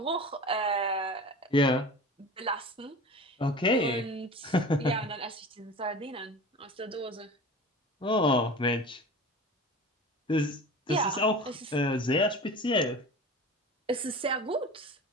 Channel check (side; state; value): both; normal; correlation 0.35